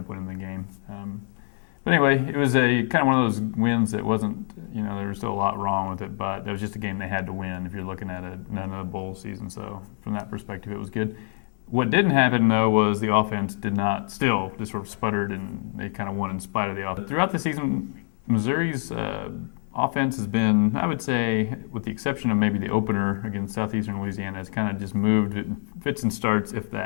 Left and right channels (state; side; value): silent; right; 61 dB below the other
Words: up winning the game. But anyway, it was a kind of one of those wins that wasn't, there was still a lot wrong with it, but that was just a game they had to win if you're looking at another bowl season. So from that perspective, it was good. What didn't happen, though, was the offense just sort of sputtered, and they kind of won in spite of the offense. Throughout the season, Missouri's offense has been, I would say, with the exception of maybe the opener against Southeastern Louisiana, has kind of just moved fits and starts, if